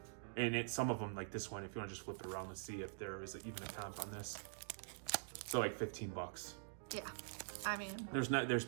and some of them, like this one, if you want to just flip it around, let's see if there is even a comp on this. So like $15. Yeah, I mean, there's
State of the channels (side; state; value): left; silent; digital silence